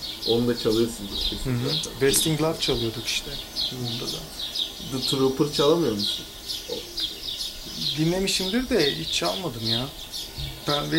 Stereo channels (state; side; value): identical; both; correlation 1.00